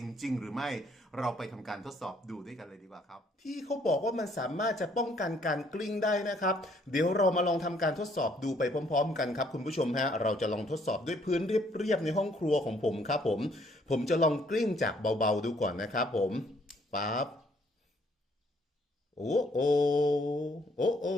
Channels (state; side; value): normal; both; correlation 0.65